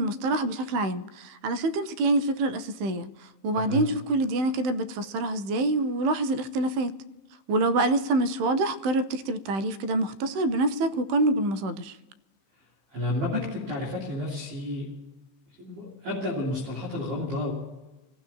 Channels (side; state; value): left; late; 15 ms